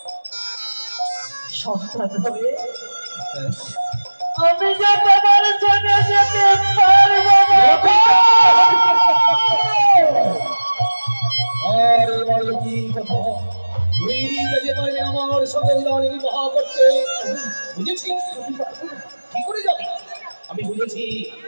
সন্তান হয়ে আমি যে তোমার সঙ্গে যেতে পারবো না। আরে বলো কি কথা? তুই যেতে পারবি আমার সঙ্গে জানি বিবাহ করতে? বুঝেছি। কি করে যাবি? আমি বুঝেছি।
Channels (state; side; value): inverted; both; correlation -1.00